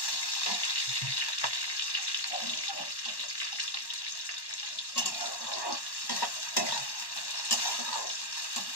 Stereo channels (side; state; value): right; late; 1.1 ms